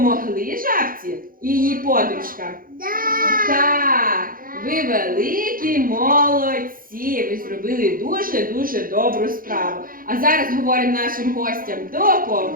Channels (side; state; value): left; late; 0.41 ms